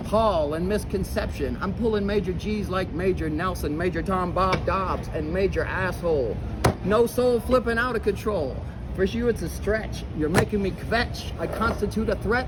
Paul, and Misconception. I'm pulling Major G's like Major Nelson, Major Tom Bob Dobbs, and Major Asshole. No soul flipping out of control. For you, it's a stretch. You're making me kvetch. I constitute a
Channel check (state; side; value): identical; both; correlation 1.00